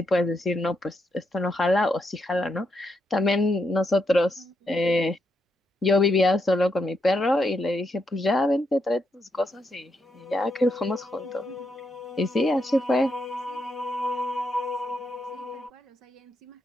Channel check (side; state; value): both; normal; correlation 0.81